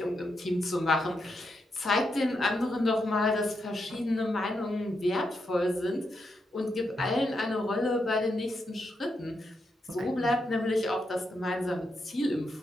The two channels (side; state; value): both; normal; correlation 0.83